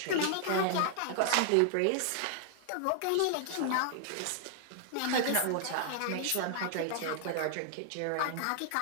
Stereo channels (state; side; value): different; both; correlation 0.00